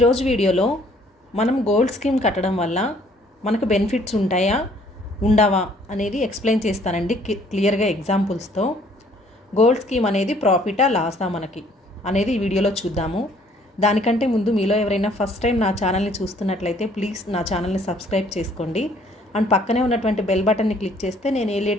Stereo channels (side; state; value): both; normal; correlation 0.61